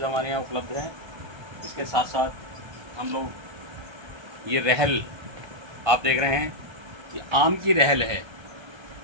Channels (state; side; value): late; left; 1.3 ms